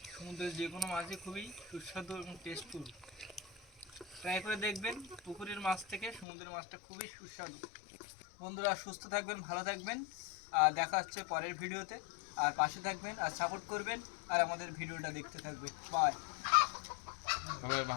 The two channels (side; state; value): right; drops out; at 6.2 s